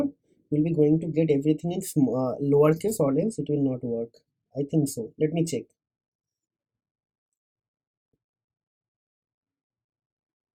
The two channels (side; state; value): both; identical; correlation 1.00